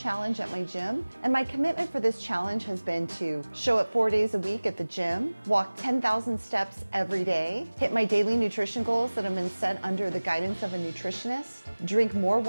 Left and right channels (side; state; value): both; inverted; correlation -1.00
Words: at my gym, and my commitment for this challenge has been to show up 4 days a week at the gym, walk 10,000 steps every day, hit my daily nutrition goals that have been set under the guidance of a nutritionist, drink more